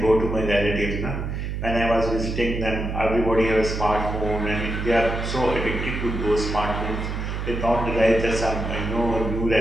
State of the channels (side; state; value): right; noise; hum, 4 dB below the sound